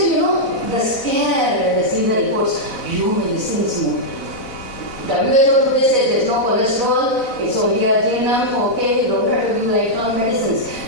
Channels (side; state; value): right; late; 4.0 ms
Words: the scare when they see the reports, medicine is more. WHO today says there's no cholesterol, it's only arginine, okay, you don't have to give lifelong medicines.